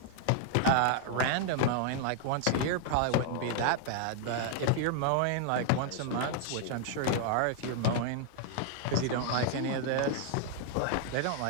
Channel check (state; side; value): different; both; correlation 0.00